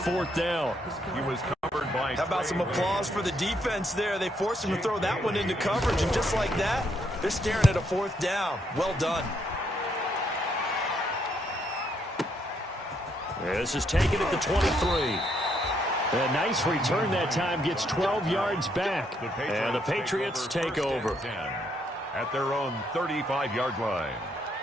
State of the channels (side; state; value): both; normal; correlation 0.74